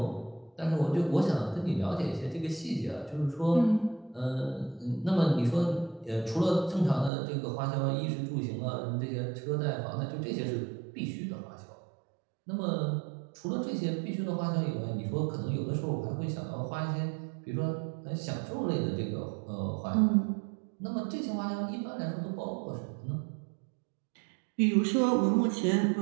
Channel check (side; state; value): left; drops out; at 7.1 s